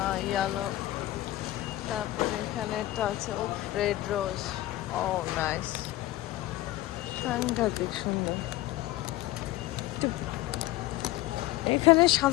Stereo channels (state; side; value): quieter; right; 16.3 dB